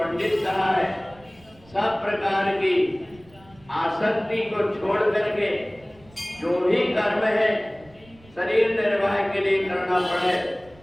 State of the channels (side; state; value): right; noise; rumble, 26 dB below the sound